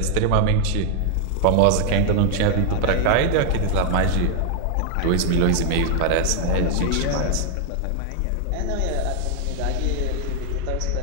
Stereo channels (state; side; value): different; both; correlation 0.00